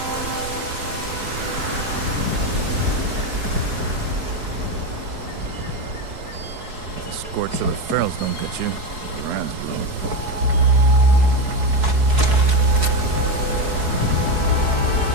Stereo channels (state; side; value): late; left; 4.7 ms